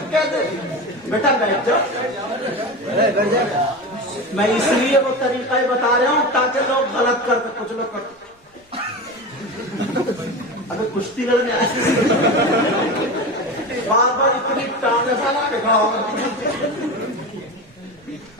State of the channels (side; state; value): both; normal; correlation 0.25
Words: کیسے۔ بیٹا بیٹھ جاؤ، میں اس لیے وہ طریقہ بتا رہا ہوں تاکہ لوگ غلط کرتے، کچھ لوگ کرتے ابھی کشتی لڑنے آئے بار بار اتنی ٹانگیں سالا کے کھڑا ہوگا۔